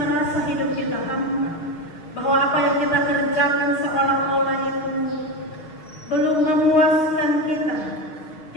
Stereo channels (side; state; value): right; late; 6.3 ms